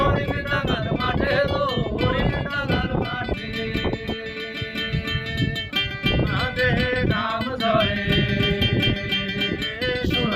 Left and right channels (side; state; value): both; identical; correlation 1.00